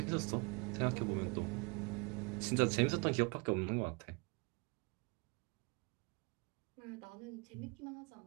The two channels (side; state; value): left; quieter; 29.9 dB